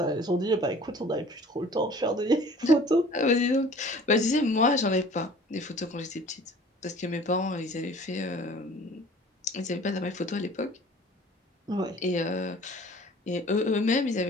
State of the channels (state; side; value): normal; both; correlation 0.48